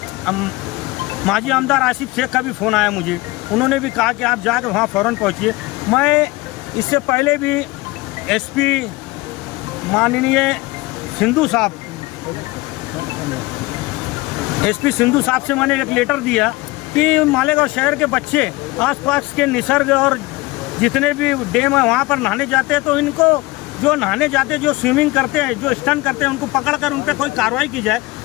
माजी आमदार आसिफ शेख का भी फ़ोन आया मुझे, उन्होंने भी कहा कि आप जाकर वहाँ फ़ौरन पहुँचिए। मैं इससे पहले भी एसपी माननीय सिंधु साहब, एसपी सिंधु साहब से मैंने एक लेटर दिया कि मालेगांव शहर के बच्चे आसपास के निसर्ग और जितने भी डैम है वहाँ पर नहाने जाते हैं तो इनको, जो नहाने जाते हैं, जो स्विमिंग करते हैं, जो स्टंट करते हैं, उनको पकड़कर उन पर कोई कार्रवाई की जाए।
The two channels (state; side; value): quieter; right; 21.7 dB